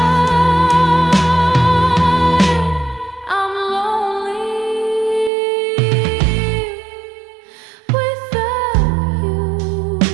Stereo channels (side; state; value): left; drops out; at 5.3 s